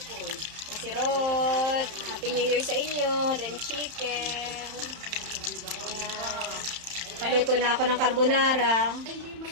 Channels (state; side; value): late; left; 31 ms